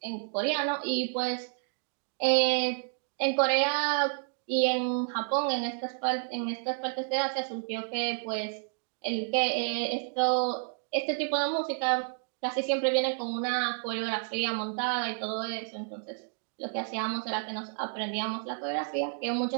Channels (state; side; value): silent; left; 58 dB below the other